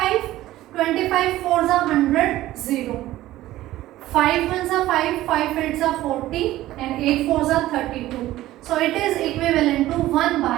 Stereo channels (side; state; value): left; quieter; 15.4 dB